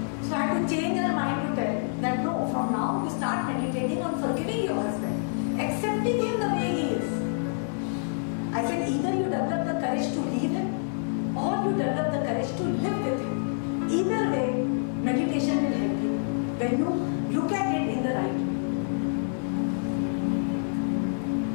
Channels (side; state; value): right; silent; 60 dB below the other